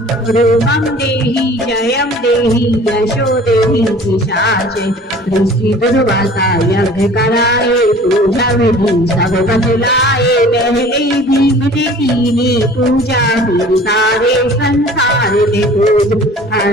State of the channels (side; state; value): both; normal; correlation 0.47